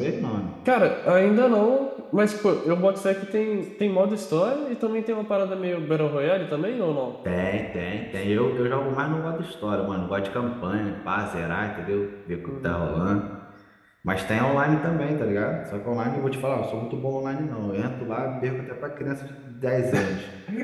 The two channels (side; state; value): both; identical; correlation 1.00